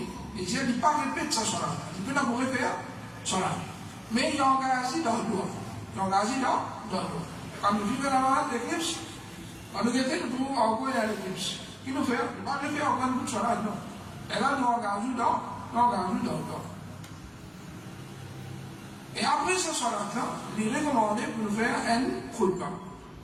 il dit, il ne pas répéter ça sur la. Il peut d'abord faire sur la. Mais il engage dans le doigt. Quand nous vivons dans l'éclipse, quand nous guettons, nous pouvons encore dans l'éclipse. Qui nous fait? Il ne pas le faire en sur la, non. Et là, nous engageons dans le doigt. Et après ce soir-là, il est recommandé pour nous faire un khutbah.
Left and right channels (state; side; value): identical; both; correlation 1.00